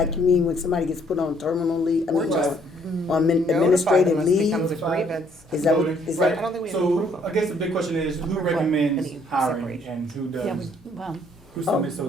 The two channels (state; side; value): normal; both; correlation 0.65